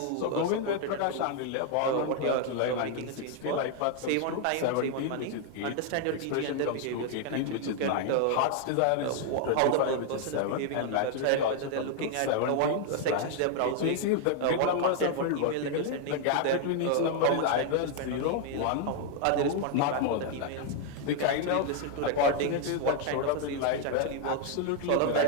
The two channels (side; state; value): both; different; correlation 0.00